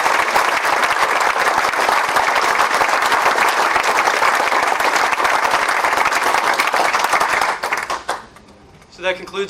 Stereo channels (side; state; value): both; identical; correlation 1.00